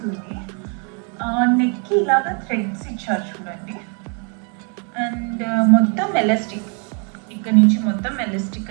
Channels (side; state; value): left; quieter; 38.7 dB